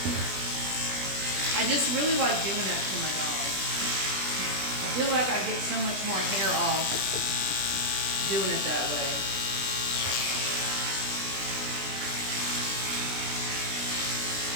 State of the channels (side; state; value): left; late; 20 ms